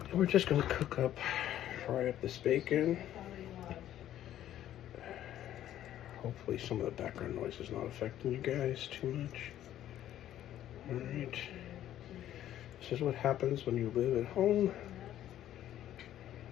And we're just going to fry up this bacon. Hopefully some of the background noise is not affecting you guys too much. Alright. This is what happens when you live at home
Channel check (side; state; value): right; quieter; 12.0 dB